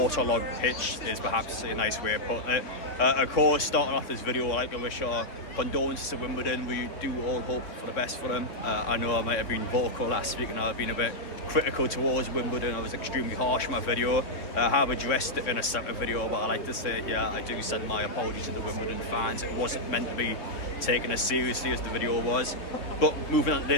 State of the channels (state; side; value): late; right; 3.6 ms